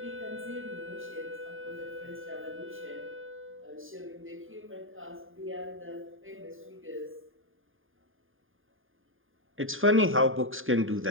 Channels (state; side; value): late; left; 0.59 ms